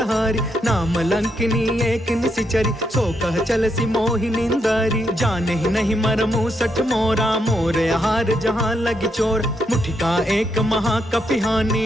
नाम लंकिनी एक निशिचरी, सो कह चल सी मोहि निंदारी। जाने ही नहीं मरमु सठ मोरा, मोर आहार जहाँ लगी चोर। मुठिका एक महाकपिहानी,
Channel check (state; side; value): normal; both; correlation 0.79